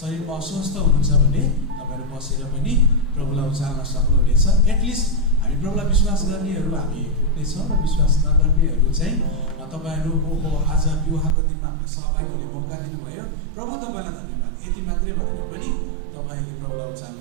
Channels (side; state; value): left; drops out; at 11.4 s